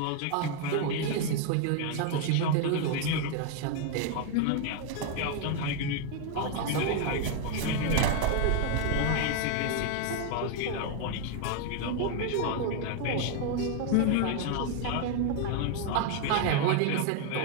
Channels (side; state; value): both; different; correlation 0.00